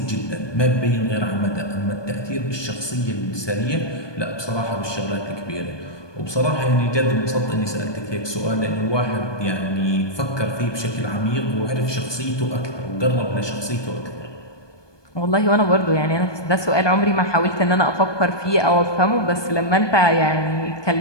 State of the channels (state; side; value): late; right; 1.2 ms